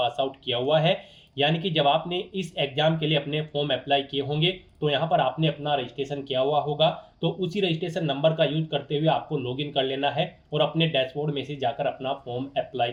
out किया हुआ है। यानी कि जब आपने इस एग्जाम के लिए अपने फॉर्म अप्लाई किए होंगे तो यहाँ पर आपने अपना रजिस्ट्रेशन किया हुआ होगा, तो उसी रजिस्ट्रेशन नंबर का यूज करते हुए आपको लॉगिन कर लेना है और अपने डैशबोर्ड में से जाकर अपना फॉर्म अप्लाई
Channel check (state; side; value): identical; both; correlation 1.00